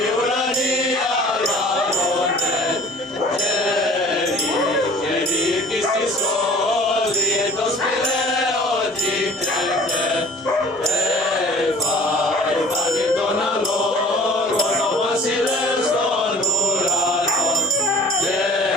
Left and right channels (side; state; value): both; normal; correlation 0.48